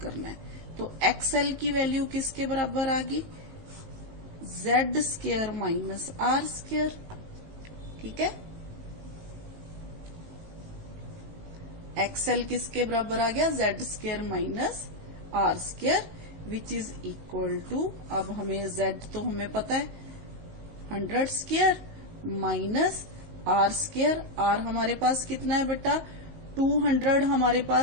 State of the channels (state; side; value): late; left; 19 ms